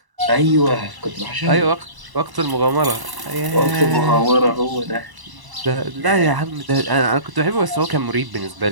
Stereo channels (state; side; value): late; left; 1.0 ms